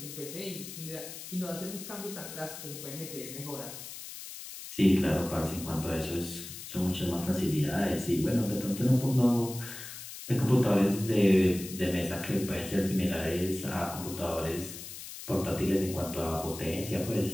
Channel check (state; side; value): noise; left; hiss, 11 dB below the sound